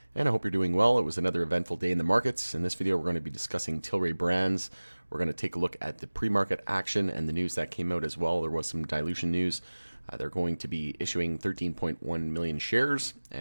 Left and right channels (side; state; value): both; inverted; correlation -1.00